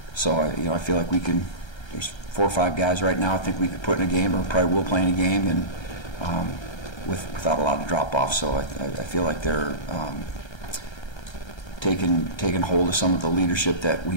so I feel like we can. There's 4 or 5 guys right now I think we could put in a game, or probably will play in a game, and without a lot of drop off. So I feel like they're taking hold of some of the leadership that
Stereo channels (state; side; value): late; right; 1.3 ms